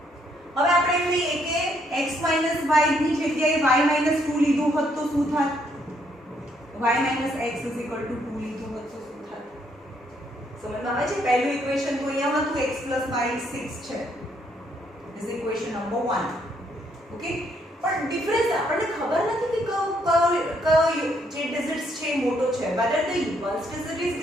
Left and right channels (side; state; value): both; normal; correlation 0.71